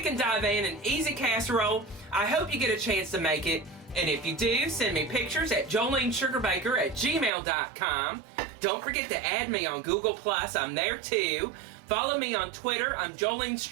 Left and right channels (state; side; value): drops out; left; at 7.3 s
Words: Divan, an easy casserole. I hope you get a chance to make it, and if you do, send me pictures at jolenesugarbaker@gmail.com. Don't forget to add me on Google+, I'm there too. Follow me on Twitter, I'm Jolene's